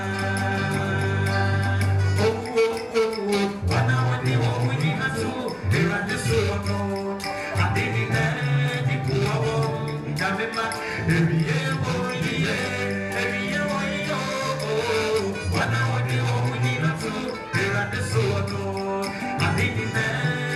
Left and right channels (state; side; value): identical; both; correlation 1.00